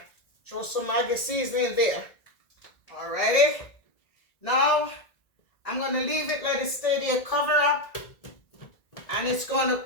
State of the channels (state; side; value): late; right; 1.8 ms